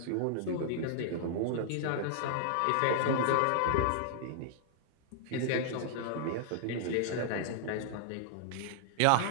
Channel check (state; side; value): different; both; correlation -0.01